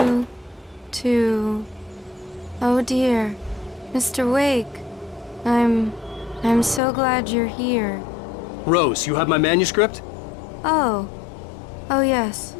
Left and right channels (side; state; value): right; drops out; at 6.8 s